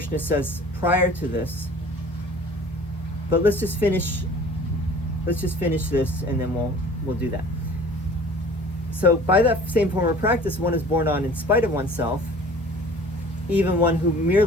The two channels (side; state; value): both; normal; correlation 0.46